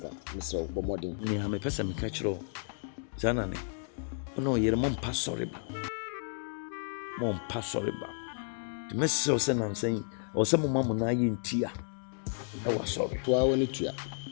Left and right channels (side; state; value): right; silent; digital silence